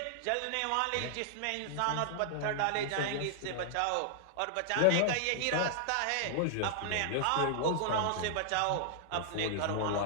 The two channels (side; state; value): both; different; correlation -0.01